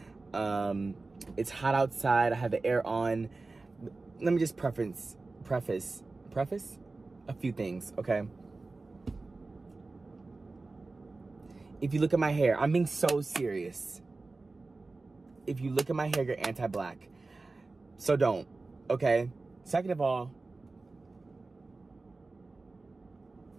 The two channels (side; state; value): left; quieter; 3.5 dB